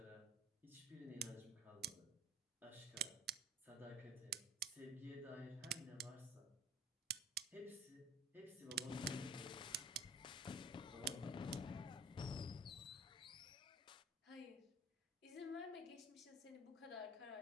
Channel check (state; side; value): normal; both; correlation 0.46